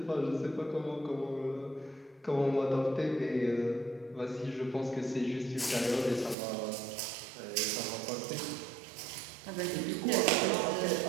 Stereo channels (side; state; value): left; drops out; at 6.4 s